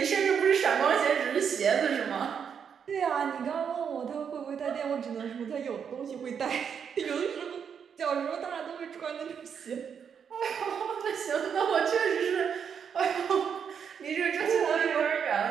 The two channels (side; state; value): left; quieter; 7.3 dB